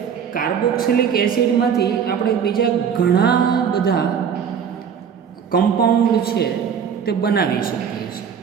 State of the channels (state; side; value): quieter; left; 7.4 dB